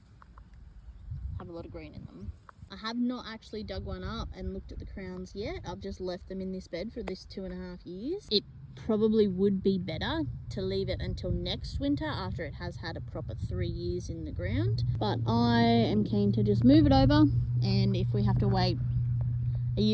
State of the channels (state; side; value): identical; both; correlation 1.00